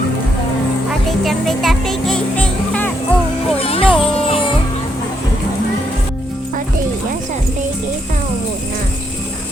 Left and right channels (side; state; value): both; normal; correlation 0.76